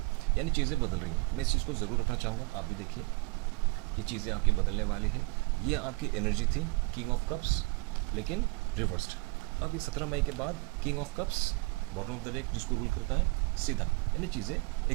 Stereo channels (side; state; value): left; quieter; 27.1 dB